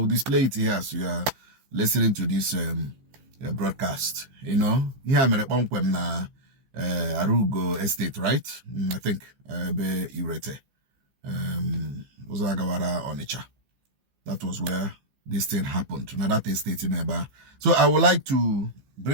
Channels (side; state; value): left; late; 15 ms